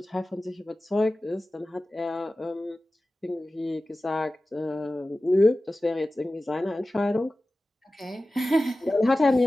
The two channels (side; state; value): both; normal; correlation 0.96